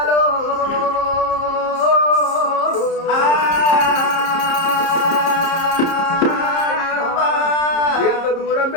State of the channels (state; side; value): late; right; 30 ms